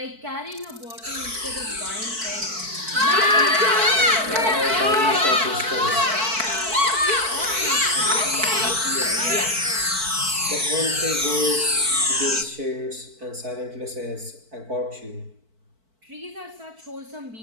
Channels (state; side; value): late; left; 4.5 ms